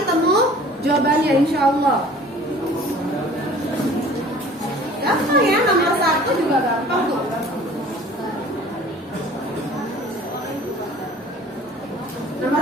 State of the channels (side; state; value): both; normal; correlation 0.48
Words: ketemu jawabannya insya Allah. Gampang ya, nomor 1 juga gampang tuh.